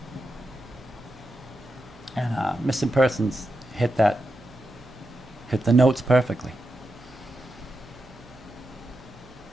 And Missing Persons hit the notes perfectly.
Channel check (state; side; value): noise; right; hum, 24 dB below the sound